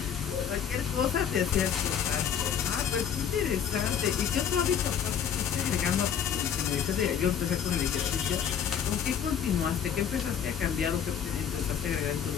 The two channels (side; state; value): right; quieter; 8.3 dB